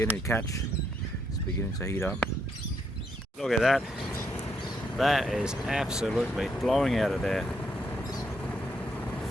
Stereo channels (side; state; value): both; normal; correlation 0.76